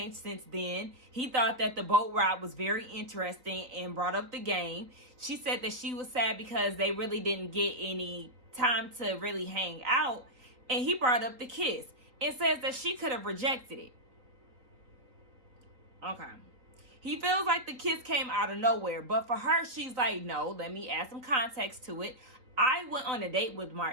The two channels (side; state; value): left; late; 3.8 ms